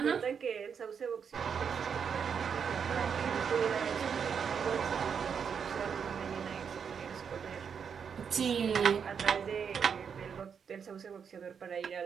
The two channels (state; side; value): quieter; left; 6.9 dB